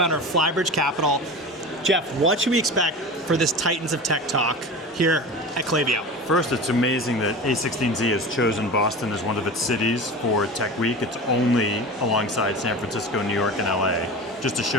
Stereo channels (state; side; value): normal; both; correlation 0.31